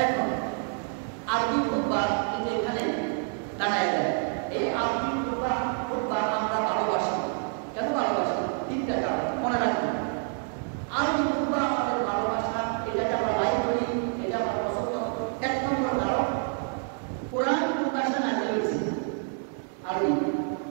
এখন আরবি খুতবা কিন্তু এখানে দাঁড়ায় যায়। এই আরবি খুতবা আমরা ভালোবাসি। কেন ভালোবাসি? 3টা কারণ মনে রাখবেন। আরবি খুতবা আমাদের ভালোবাসা, এটাকে আমরা লাইক করি, এটা আমরা পছন্দ। 1 নম্বর কারণ, কোরআন কোন ভাষায় নাযিল হয়েছে? আরবি।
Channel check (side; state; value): left; silent; 56 dB below the other